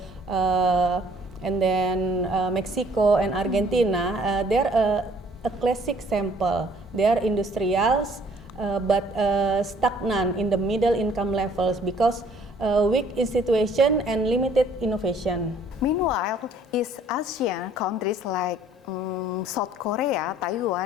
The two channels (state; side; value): normal; both; correlation 0.59